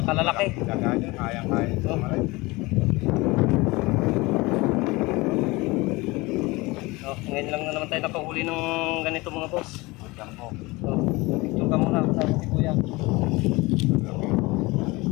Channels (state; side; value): quieter; right; 22.8 dB